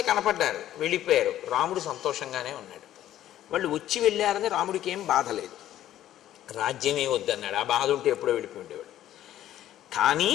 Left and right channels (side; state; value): right; quieter; 12.6 dB